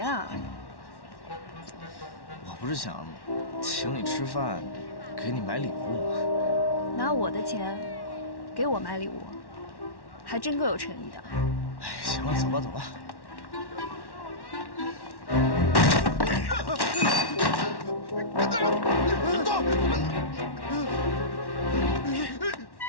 我不是想请你吃饭，给你买礼物吗？拿我的钱给我买礼物，还真够有诚意的。哎，行了，走吧。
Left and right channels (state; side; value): late; right; 1.1 ms